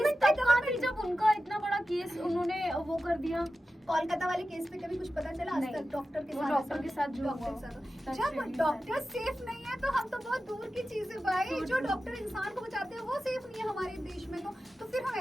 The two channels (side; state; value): both; normal; correlation 0.93